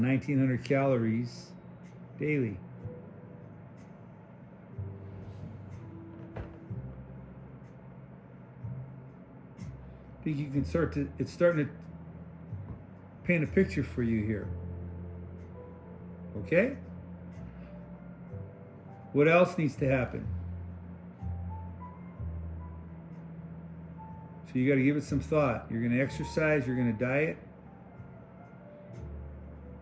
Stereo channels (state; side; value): identical; both; correlation 1.00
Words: calories daily. I think you can it's starting to paint a picture for you here. Okay? What else needs to happen? So you got to give it some thought. You're going to exercise, you're going to diet.